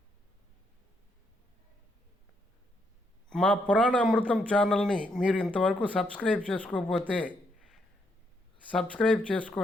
మా పురాణ అమృతం ఛానల్ని మీరు ఇంతవరకు సబ్స్క్రైబ్ చేసుకోకపోతే సబ్స్క్రైబ్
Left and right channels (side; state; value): both; normal; correlation 0.76